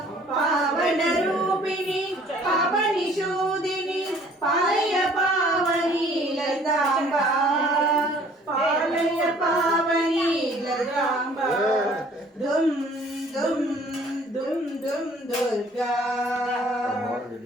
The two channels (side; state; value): both; normal; correlation 0.56